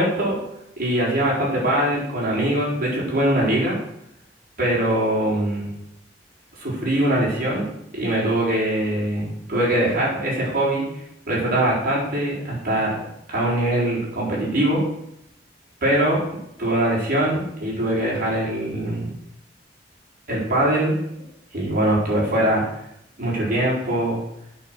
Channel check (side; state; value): both; normal; correlation 0.36